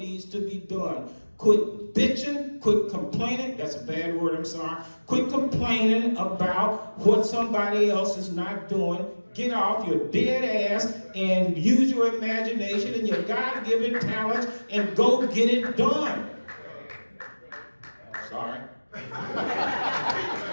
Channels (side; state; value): both; inverted; correlation -1.00